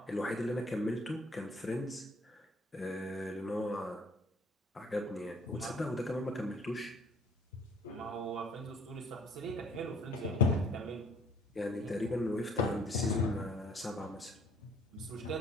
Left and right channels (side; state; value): both; normal; correlation 0.58